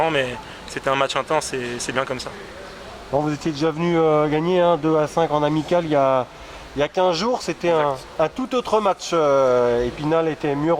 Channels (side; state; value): both; identical; correlation 1.00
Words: mais c'était un match intense et c'est bien comme ça. Bon, vous étiez déjà venu gagner 2-5 en amical il y a 15 jours. C'était un tout autre match. Épinal était mieux